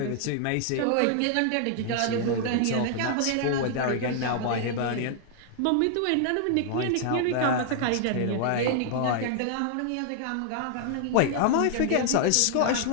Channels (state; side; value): different; both; correlation 0.00